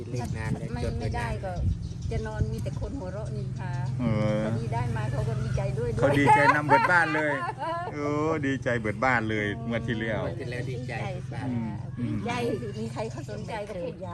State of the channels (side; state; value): both; identical; correlation 1.00